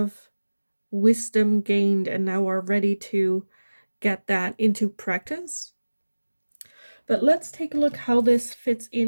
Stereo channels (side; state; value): both; inverted; correlation -1.00